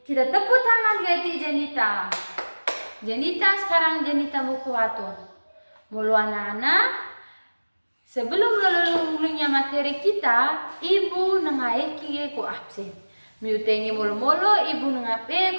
Kita tepuk tangan gati Jenita. Jenita sekarang Jenita buku waktu. Mulu anak-anak, sebelum lulungnya materi kita, ibu nengaiki ko absen. Miu tengi mulu-mulu ibu nengape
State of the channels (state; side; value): inverted; both; correlation -1.00